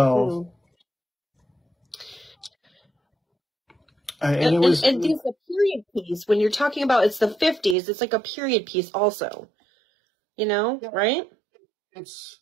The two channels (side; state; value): left; drops out; at 7.8 s